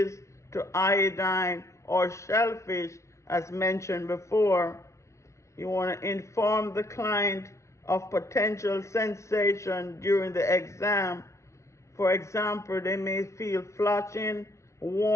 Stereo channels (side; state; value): right; late; 0.14 ms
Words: to iodine or shellfish as mentioned before. You want to inform the client of potential sensation during the exam. For example, they may feel flushing,